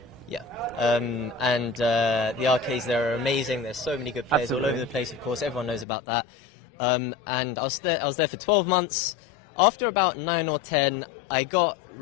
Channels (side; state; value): right; drops out; at 5.9 s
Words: Yeah, and the arcades there are amazing. There's so many good players all over the place, of course, everyone knows about that. And I was there for 12 months. After about 9 or 10, I got